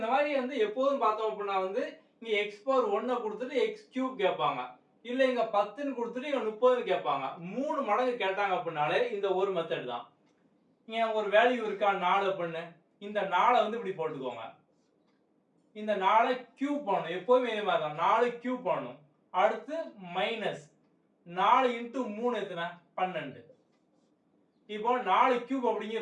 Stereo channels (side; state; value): both; identical; correlation 1.00